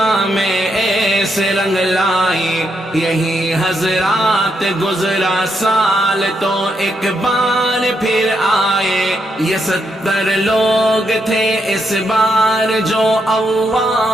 میں ایسے رنگ لائی، یہی حضرات گزرا سال تو ایک بار پھر آئے، یہ 70 لوگ تھے اس بار جو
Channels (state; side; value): normal; both; correlation 0.79